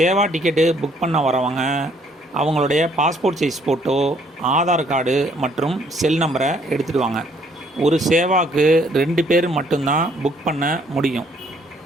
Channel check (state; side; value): normal; both; correlation 0.65